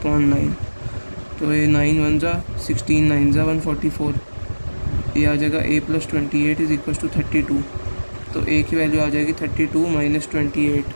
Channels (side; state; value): both; inverted; correlation -1.00